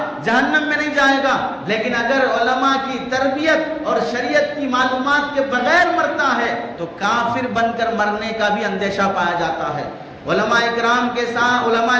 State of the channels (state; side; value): identical; both; correlation 1.00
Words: جہنم میں نہیں جائے گا، لیکن اگر علماء کی تربیت اور شریعت کی معلومات کے بغیر مرتا ہے تو کافر بن کر مرنے کا بھی اندیشہ پایا جاتا ہے۔ علماء اکرام کے ساتھ علماء